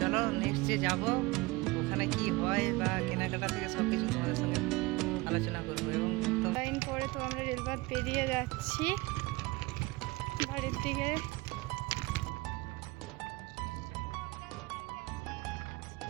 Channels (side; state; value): left; quieter; 22.9 dB